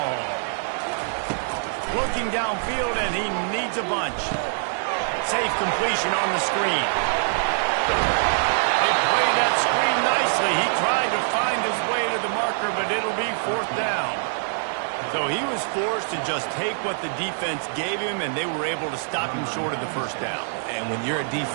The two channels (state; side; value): silent; left; 56 dB below the other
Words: Looking downfield, and he needs a bunch. Safe completion on the screen. They played that screen nicely. He tried to find his way to the marker, but it'll be 4th down. So he was forced to just take what the defense gave him, and they were able to stop him short of the 1st down. And when you're a